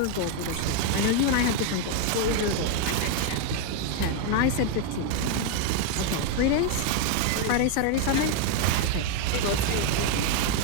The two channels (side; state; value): both; different; correlation 0.01